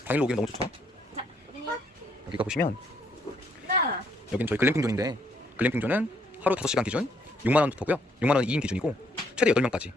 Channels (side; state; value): both; normal; correlation 0.70